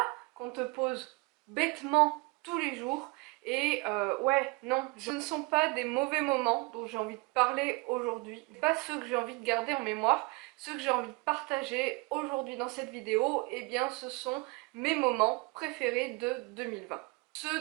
?» qu'on te pose bêtement tous les jours. Et ouais, non, ce ne sont pas des mauvais moments dont j'ai envie de parler aujourd'hui, pas ceux que j'ai envie de garder en mémoire, ceux que j'ai envie de partager aujourd'hui dans cette vidéo, eh bien ce sont mes moments préférés de 2020.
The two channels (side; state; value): left; quieter; 26.6 dB